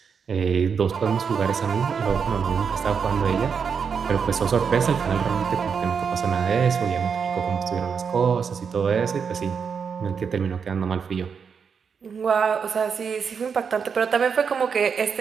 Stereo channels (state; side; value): quieter; left; 6.3 dB